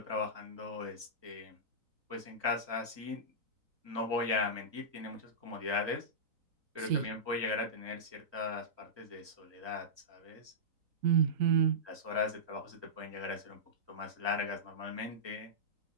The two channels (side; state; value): left; late; 3.9 ms